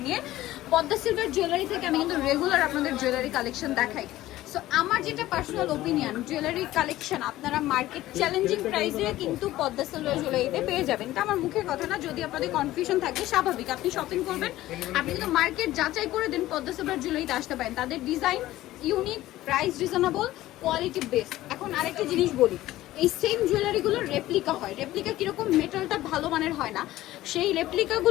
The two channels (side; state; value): right; quieter; 15.6 dB